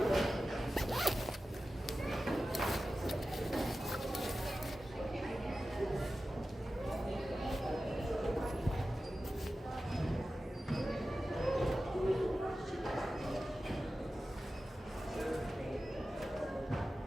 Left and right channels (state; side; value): normal; both; correlation 0.94